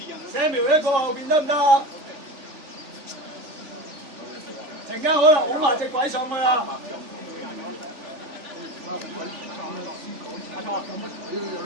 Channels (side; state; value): left; late; 3.4 ms